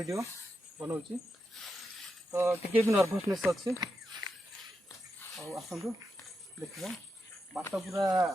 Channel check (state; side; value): normal; both; correlation 0.86